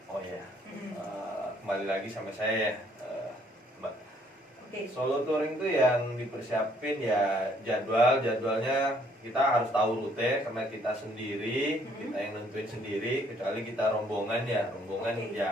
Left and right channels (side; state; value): both; normal; correlation 0.64